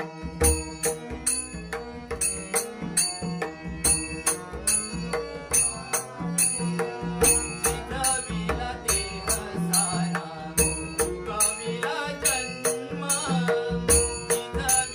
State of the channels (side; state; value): both; identical; correlation 1.00